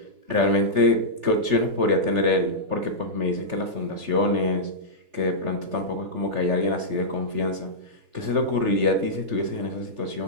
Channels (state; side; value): late; left; 3.4 ms